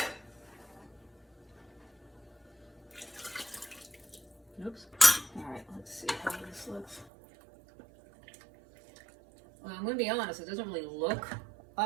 Oops. All right, let's see how this looks. Well, I'm going to be honest, it doesn't really look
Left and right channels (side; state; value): left; drops out; at 7.1 s